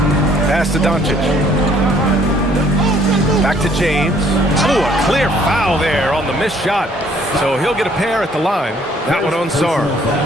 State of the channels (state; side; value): normal; both; correlation 0.61